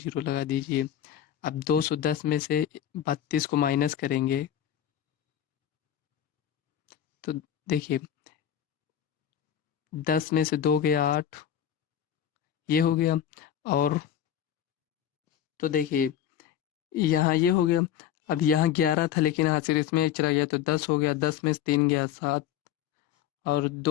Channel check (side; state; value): right; quieter; 10.3 dB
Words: लगा दीजिए। अब 210 में से 32 को माइनस करेंगे तो देखिए 10 में से 2 गया 8, ये हो गया। और तो देखिए यहाँ ये हो गया। अब यहाँ 11 था लेकिन हासिल इसमें एक चला गया तो 10 हो गया, 10 में से 3 गया 7 और